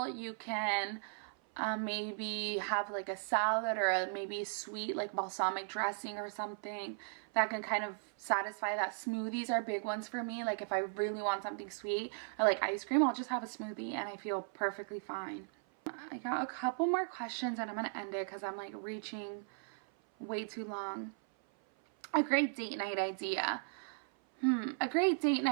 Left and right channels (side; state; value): left; silent; 53 dB below the other